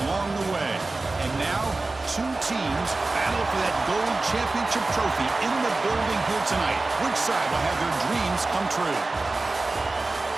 along the way. And now, two teams battle for that gold championship trophy in the building here tonight. Which side will have their dreams come true?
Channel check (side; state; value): left; quieter; 3.3 dB